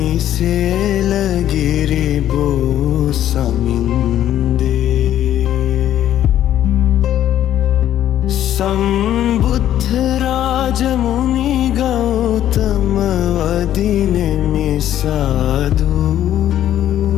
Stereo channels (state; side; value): quieter; right; 11.6 dB